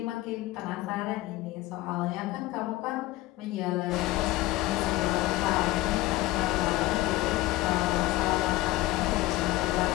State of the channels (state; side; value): quieter; right; 17.8 dB